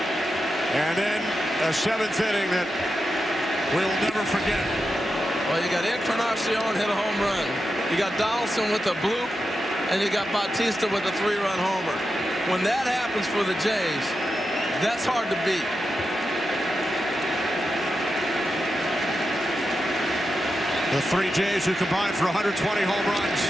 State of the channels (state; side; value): normal; both; correlation 0.89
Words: And then a 7th inning that we'll never forget. Well, you got Encarnacion hit a home run. You got Donaldson with a bloop. And you got Bautista with a 3-run homer. When that happens for the Jays, that's hard to beat. The 3 Jays who combined for 120 home runs